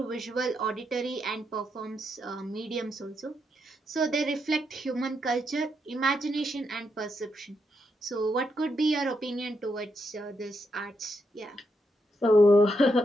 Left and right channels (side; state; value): both; normal; correlation 0.81